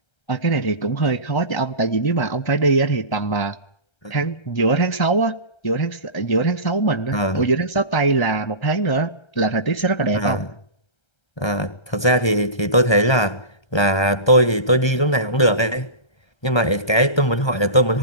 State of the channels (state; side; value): late; right; 1.3 ms